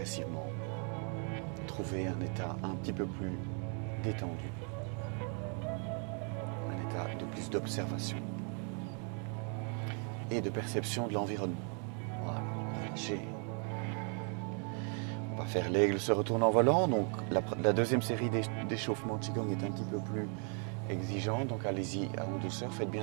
trouver un état un petit peu plus détendu, un état de plus d'observation et de perception de l'environnement. Voilà, relâchez. On va faire l'aigle se retourne en volant, donc la deuxième série d'échauffement Qigong est un petit peu plus exigeant, donc allez-y en douceur, faites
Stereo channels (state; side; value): quieter; left; 38.7 dB